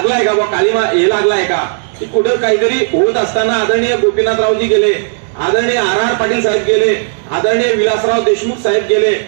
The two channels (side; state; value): left; silent; 72 dB below the other